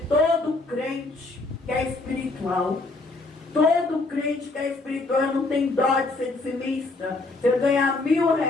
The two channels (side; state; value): right; quieter; 3.2 dB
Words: crente que é espiritual. Todo crente que é espiritual não tem dó de ser dizimista. Se ele ganhar